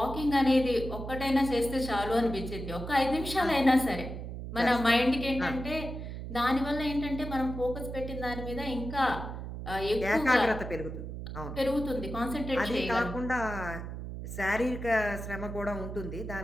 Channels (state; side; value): noise; right; hum, 8 dB below the sound